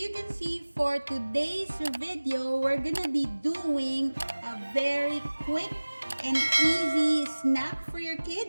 can see for today's video, we're gonna be doing a very quick and easy snack for your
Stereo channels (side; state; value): both; inverted; correlation -1.00